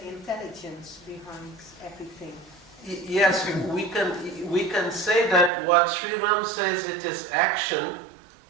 intelligence behind everything. Yes, we can say that what Sri Ram says, it is action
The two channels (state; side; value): drops out; left; at 5.5 s